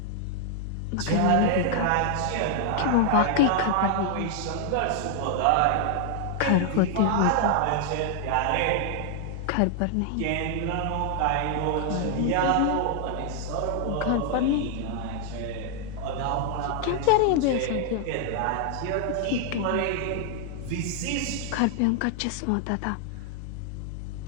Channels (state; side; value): different; both; correlation 0.00